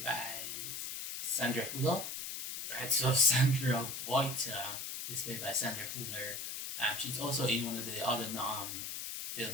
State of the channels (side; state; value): left; noise; hiss, 5 dB below the sound